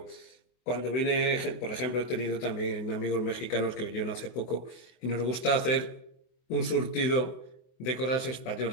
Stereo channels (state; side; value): late; right; 24 ms